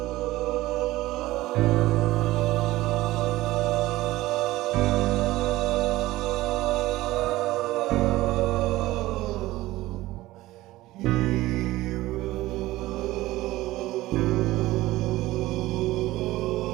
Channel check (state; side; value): quieter; left; 17.5 dB